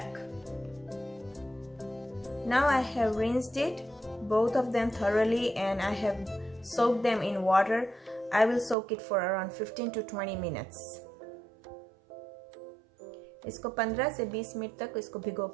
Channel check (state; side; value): drops out; left; at 8.8 s